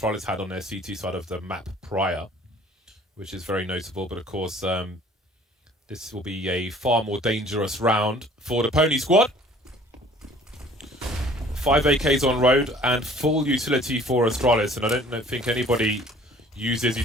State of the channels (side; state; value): both; normal; correlation 0.52